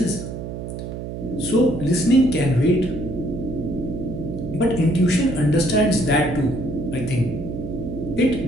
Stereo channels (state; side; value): noise; right; hum, 7 dB below the sound